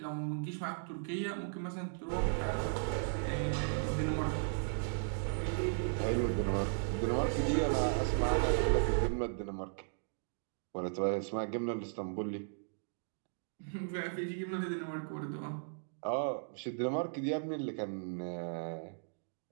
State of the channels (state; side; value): silent; left; digital silence